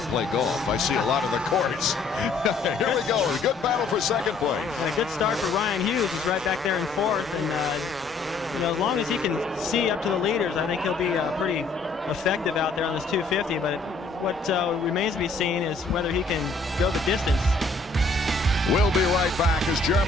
play golf. I see a lot of the courts. Here we go. A good battle for second place. And a good start for Ryan Hughes. He's right back there in fourth. And, you know, as long as he can see up to the leaders, I think he'll be pretty effective out there on this 250. But what remains to be seen is whether he can go the distance. We'll be right back as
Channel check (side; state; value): right; quieter; 3.9 dB